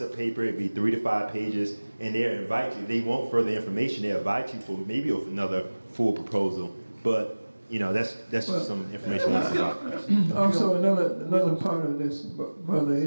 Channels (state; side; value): inverted; both; correlation -1.00